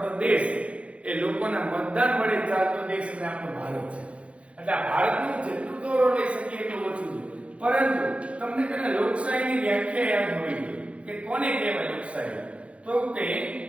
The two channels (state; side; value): late; left; 0.062 ms